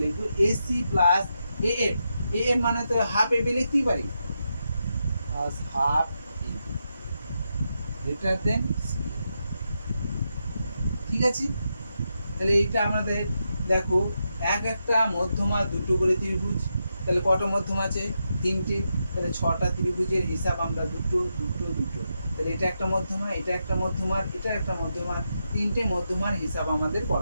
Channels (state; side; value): inverted; both; correlation -0.85